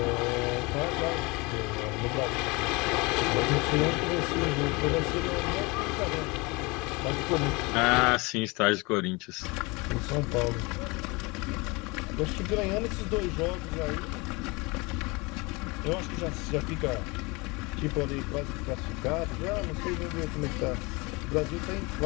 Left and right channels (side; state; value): right; quieter; 26.0 dB